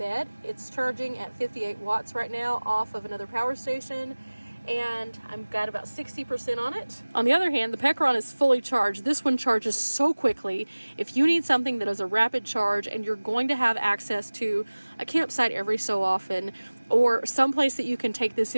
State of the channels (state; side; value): inverted; both; correlation -1.00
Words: It's charging at 58 watts right now off of another power station, and I've got about 60% on it. On the other hand, the Pecron is fully charged. This one charges so quickly. If you need something that is a rapid charge and you're going to have access to a campsite every so often, or someplace that you can take this